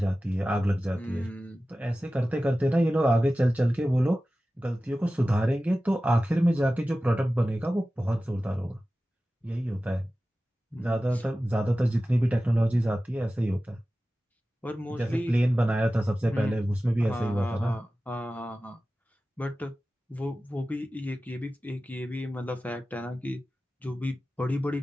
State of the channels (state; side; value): normal; both; correlation 0.95